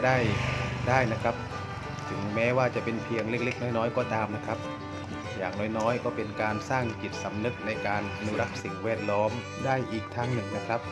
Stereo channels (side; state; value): both; identical; correlation 1.00